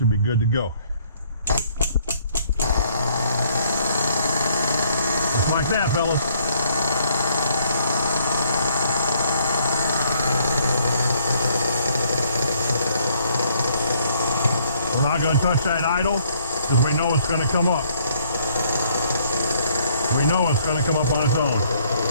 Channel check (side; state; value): both; inverted; correlation -0.65